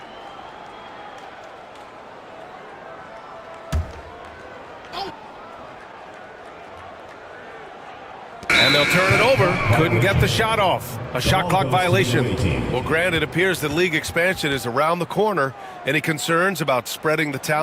And they'll turn it over. Couldn't get the shot off. A shot clock violation. Well, Grant, it appears that league expansion is around the corner. Any concerns about spreading the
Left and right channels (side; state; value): both; identical; correlation 1.00